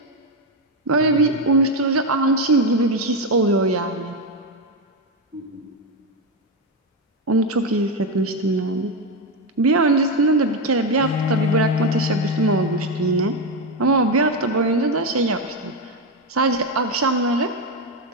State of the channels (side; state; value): both; normal; correlation 0.09